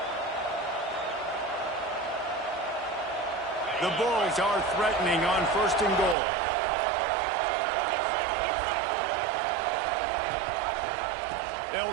The Bulls are threatening on 1st and goal. They'll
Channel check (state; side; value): drops out; left; at 6.2 s